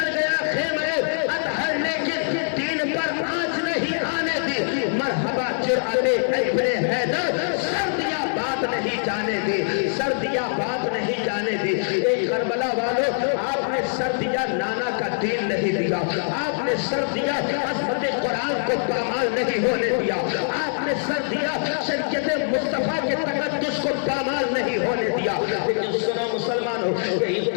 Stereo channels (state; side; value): silent; right; digital silence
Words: گیا خیمے اطہر لیکن دین پر آنچ نہیں آنے دی، مرحبا جرأت ابن حیدر، سردیاں بات نہیں جانے دی، سردیاں بات نہیں جانے دی۔ ایک کربلا والوں، آپ نے سردیاں نانا کا دین نہیں دیا، آپ نے سردیاں عظمت قرآن کو پامال نہیں ہونے دیا، آپ نے سردیاں شریعت مصطفیٰ کے تقدس کو پامال نہیں ہونے دیا۔ لیکن سنو مسلمانوں، یہی